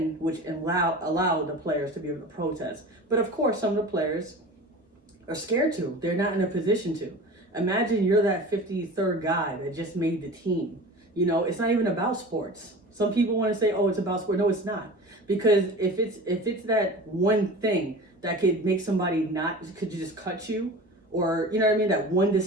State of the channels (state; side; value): normal; both; correlation 0.36